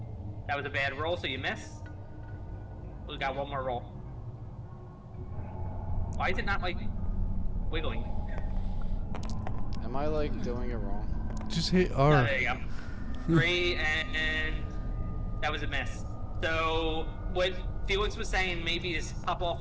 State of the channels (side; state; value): both; identical; correlation 1.00